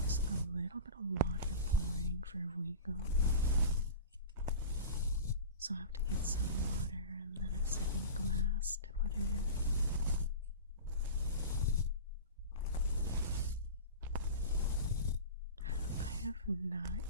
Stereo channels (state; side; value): inverted; both; correlation -0.33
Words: a little bit of water pouring for Vigo. So I'll have to get some water and then a second glass to put in. I have not